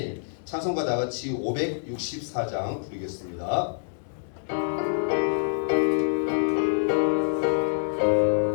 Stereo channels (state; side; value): silent; right; digital silence